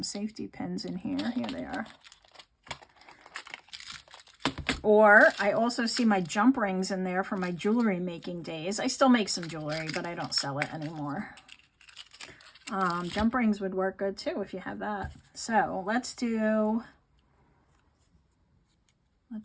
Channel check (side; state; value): both; identical; correlation 1.00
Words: safety pins in here. Here they are. Or I also see my jump rings in there from my jewelry making days. I still make some jewelry, but I don't sell it anymore. Jump rings would work good too if you have that. So let's do